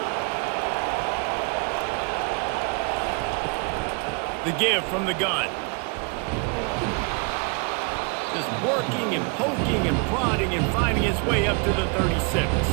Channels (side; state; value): left; quieter; 35.1 dB